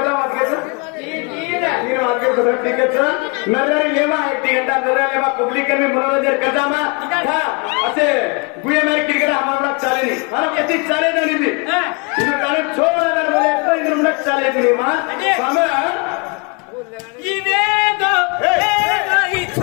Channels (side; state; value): right; quieter; 32.4 dB